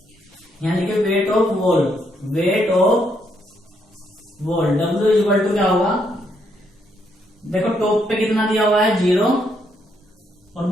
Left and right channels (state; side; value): normal; both; correlation 0.75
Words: weight of wall. W equal to क्या होगा, देखो टॉप पे कितना दिया हुआ है 0 और